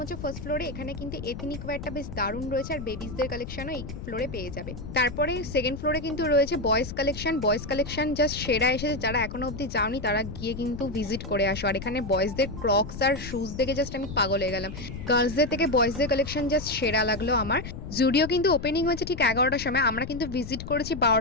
হচ্ছে ফার্স্ট ফ্লোরে। এখানে কিন্তু এথনিক ওয়্যারটা বেশ দারুণ রয়েছে, আর বেবিসদের কালেকশনও এই ফ্লোরে পেয়ে যাবে। তারপরে সেকেন্ড ফ্লোরে কিন্তু রয়েছে boys collection. Boys collection just সেরা এসেছে, যারা এখনো অব্দি যাওনি তারা গিয়ে কিন্তু ভিজিট করে আসো। আর এখানে বয়েজদের ক্রক্স আর শুজ দেখে জাস্ট আমি পাগল হয়ে গেলাম। গার্লসদের থেকে বয়েজদের কালেকশন জাস্ট সেরা লাগলো আমার। জুডিও কিন্তু ওপেনিং হয়েছে ঠিক 11টার সময়, আমরা কিন্তু ভিজিট করেছি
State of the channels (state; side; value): noise; left; rumble, 9 dB below the sound